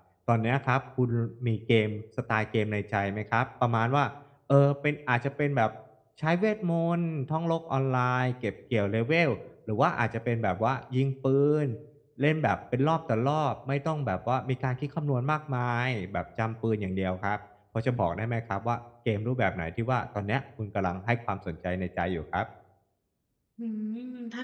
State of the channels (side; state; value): both; identical; correlation 1.00